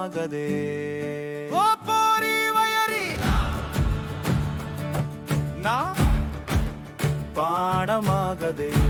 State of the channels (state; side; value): identical; both; correlation 1.00